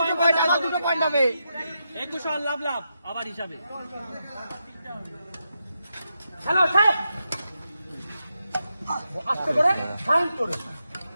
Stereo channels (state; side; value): inverted; both; correlation -0.86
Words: আবার দুটো পয়েন্ট হবে। 21 লাভ লাভ আবার হিসাবে। হ্যালো আস্তে করে